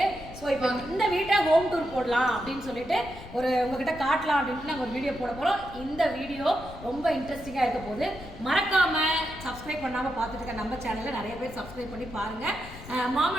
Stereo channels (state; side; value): noise; left; rumble, 15 dB below the sound